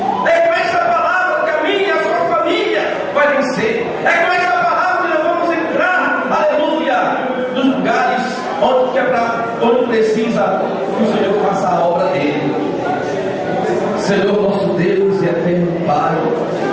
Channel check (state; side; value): identical; both; correlation 1.00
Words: É com essa palavra que a minha e a sua família vai vencer. É com essa palavra que nós vamos entrar, aleluia, nos lugares onde precisa que o Senhor faça a obra dele. Senhor nosso Deus e eterno Pai,